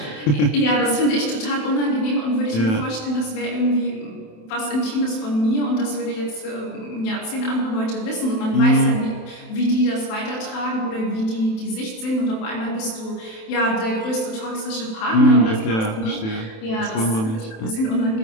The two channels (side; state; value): right; late; 27 ms